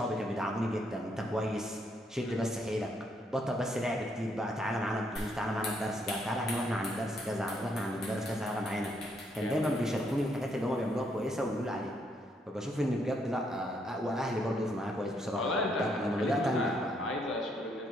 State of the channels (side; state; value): both; normal; correlation 0.73